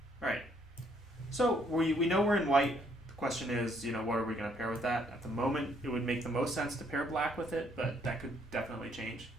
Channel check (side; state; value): both; normal; correlation 0.68